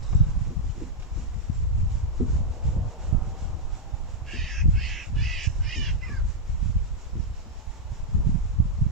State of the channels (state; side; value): normal; both; correlation -0.02